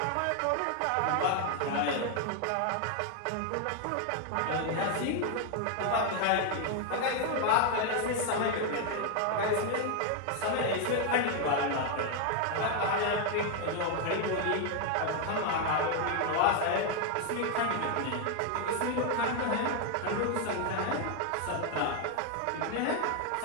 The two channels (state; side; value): different; both; correlation 0.01